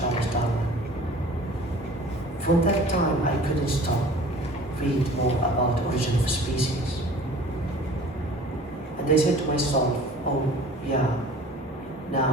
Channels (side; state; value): both; normal; correlation 0.45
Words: Darwin. From that time, I couldn't stop read more about origin of species. And I said to myself, oh yeah,